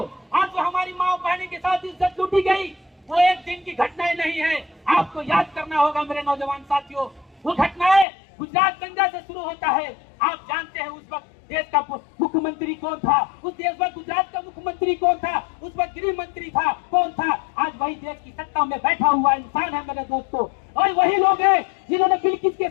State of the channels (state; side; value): drops out; right; at 8.1 s